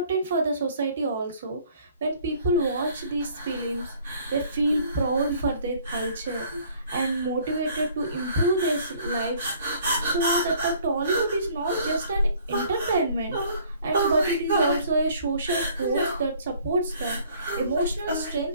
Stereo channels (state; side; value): inverted; both; correlation -0.57